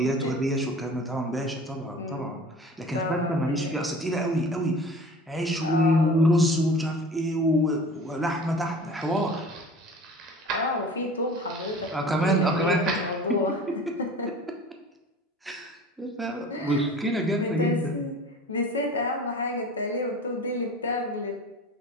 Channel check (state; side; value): normal; both; correlation 0.41